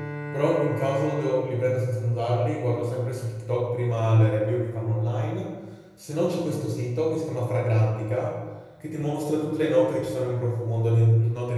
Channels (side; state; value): both; identical; correlation 1.00